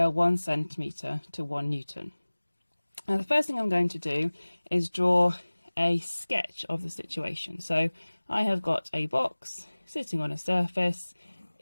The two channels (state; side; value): inverted; both; correlation -1.00